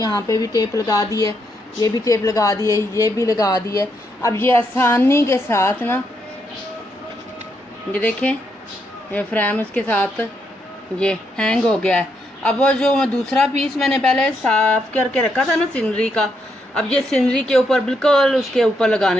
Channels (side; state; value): both; normal; correlation 0.78